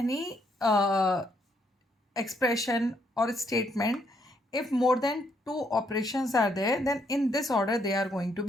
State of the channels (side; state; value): both; normal; correlation 0.73